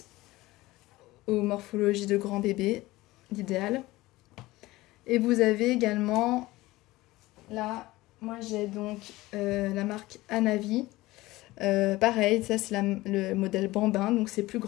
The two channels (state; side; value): quieter; right; 18.9 dB